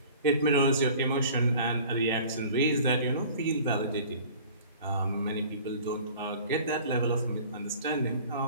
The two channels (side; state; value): both; inverted; correlation -0.46